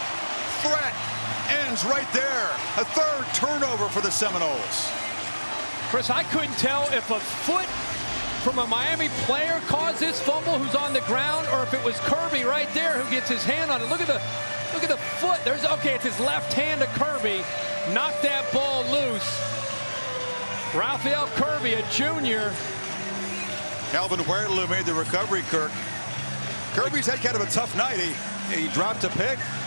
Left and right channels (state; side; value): inverted; both; correlation -1.00